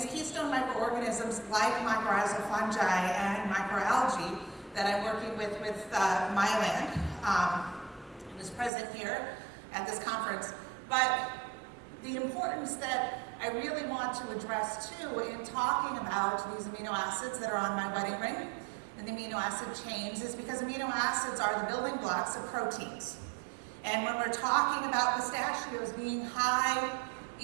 keystone microorganisms, like mycorrhizal fungi and microalgae, that I'm working with MyLand, is present here at this conference. But the importance that I really want to address too in talking about these amino acids that are on my wedding ring and the amino acid chains is because amino acids are the building blocks of proteins. And when we're talking about pistachios being high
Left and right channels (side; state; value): left; drops out; at 8.7 s